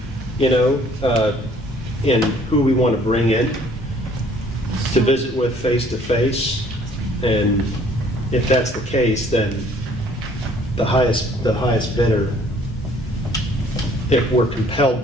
and who we want to bring in to visit with face to face. And if that's the case, then the highest bidder, if we're compelled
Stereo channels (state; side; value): normal; both; correlation 0.58